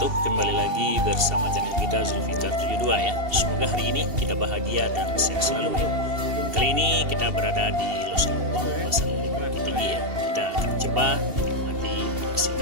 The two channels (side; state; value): left; late; 2.7 ms